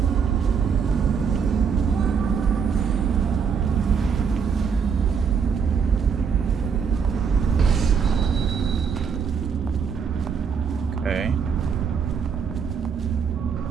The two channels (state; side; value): quieter; left; 6.4 dB